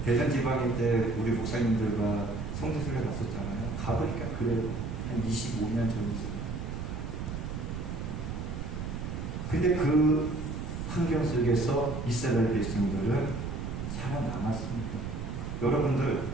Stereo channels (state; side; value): noise; right; rumble, 5 dB below the sound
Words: 대전 지방일 때 우리 목사님들과 성지순례 갔었잖아요. 가보니까 그래요. 한 25년 전이죠. 근데 그 환경 속에서 이스라엘 백성들은 살아남았습니다. 여러분들,